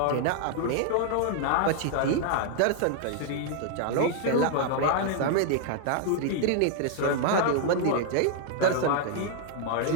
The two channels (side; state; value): both; different; correlation 0.00